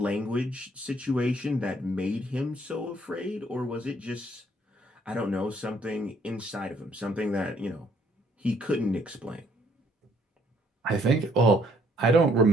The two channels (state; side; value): normal; both; correlation 0.65